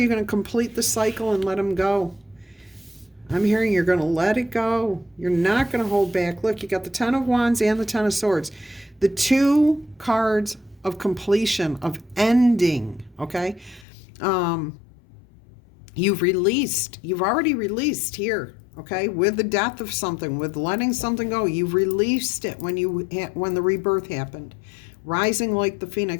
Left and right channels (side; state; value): right; drops out; at 13.9 s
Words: going to complete the cycle and let them go? I'm hearing you're going to let it go. You're not going to hold back. Look, you got the Ten of Wands and the Ten of Swords. The two cards of completion, of ending, okay? You've already released here, okay? With the death of something, with letting something go. You've released it when the rebirth happened. Rising like the